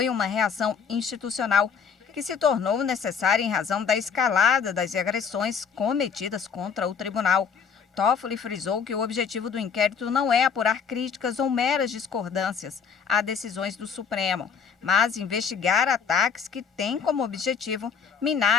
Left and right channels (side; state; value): right; quieter; 6.4 dB